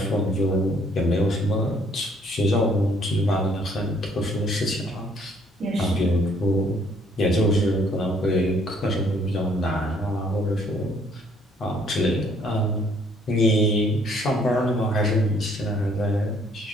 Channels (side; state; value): both; normal; correlation 0.63